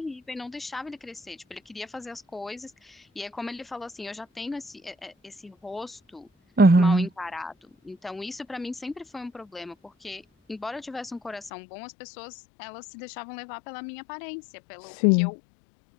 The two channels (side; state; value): right; drops out; at 11.5 s